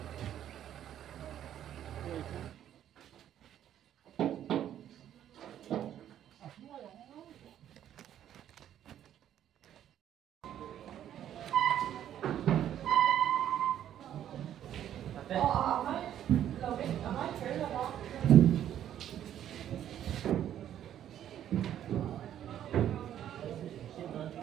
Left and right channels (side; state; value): left; quieter; 10.8 dB